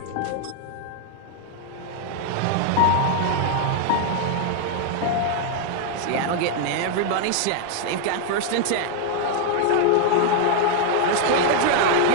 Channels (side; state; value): both; different; correlation 0.00